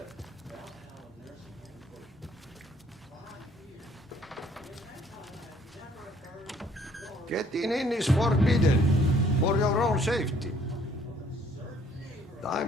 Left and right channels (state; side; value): normal; both; correlation 0.61